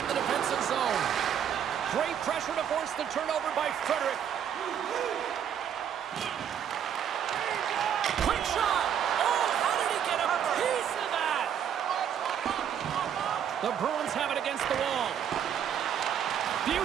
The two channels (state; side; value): quieter; left; 8.9 dB